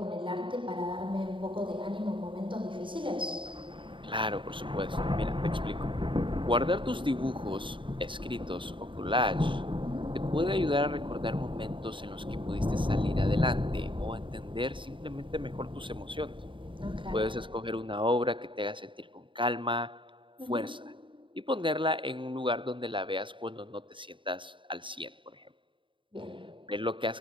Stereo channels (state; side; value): late; left; 0.24 ms